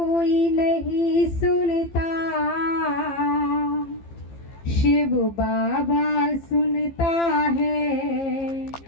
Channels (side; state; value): right; late; 15 ms